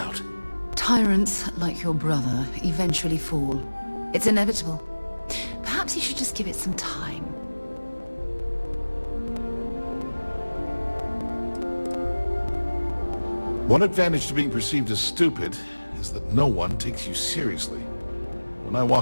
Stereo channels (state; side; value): inverted; both; correlation -1.00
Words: Tyrants, like your brother, eventually fall. It's inevitable. Perhaps you should just give it some time. One advantage to being perceived as stupid is that no one takes you seriously. When I